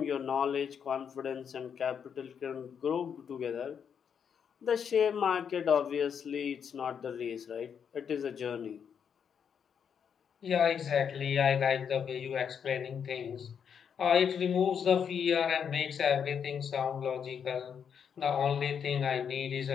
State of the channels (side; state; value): right; quieter; 7.4 dB